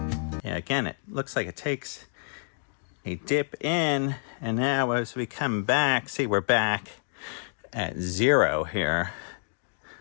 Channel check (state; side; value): silent; right; digital silence